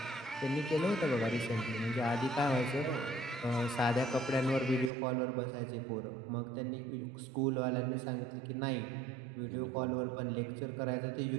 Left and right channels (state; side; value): drops out; left; at 4.9 s